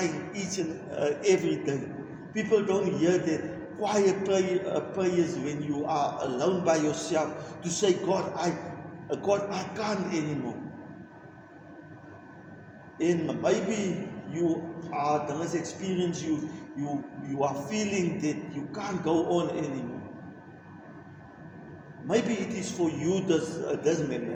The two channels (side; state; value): both; identical; correlation 1.00